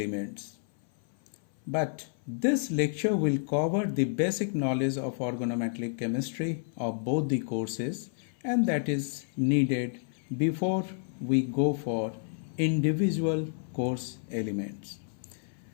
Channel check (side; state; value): right; silent; 57 dB below the other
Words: But this lecture will cover the basic knowledge of organometallic chemistry of both the courses, and that is needed before we go for individual course elements.